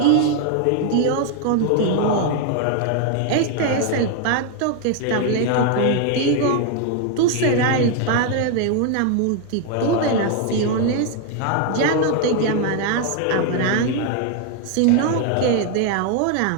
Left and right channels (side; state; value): both; different; correlation 0.01